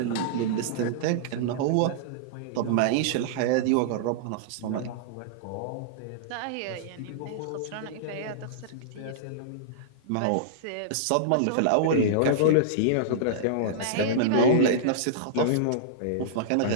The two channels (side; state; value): both; different; correlation -0.02